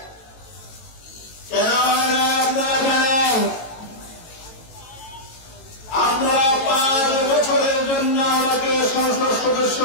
কেন আপনারা জানেন, আপনারা 5 বছরের জন্য আমাকে সংসদ সদস্য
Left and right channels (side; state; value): right; late; 18 ms